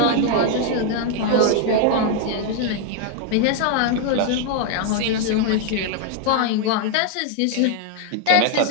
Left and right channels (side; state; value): both; different; correlation 0.00